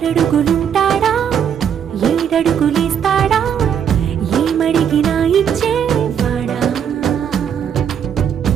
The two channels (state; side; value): quieter; left; 8.4 dB